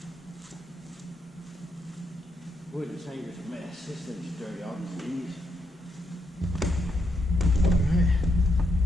Boy, this hanger's a mess. This thing's dirty off his knees. Alright.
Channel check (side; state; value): both; normal; correlation 0.80